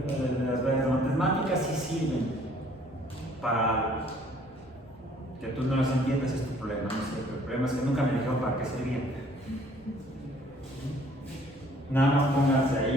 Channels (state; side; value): normal; both; correlation 0.58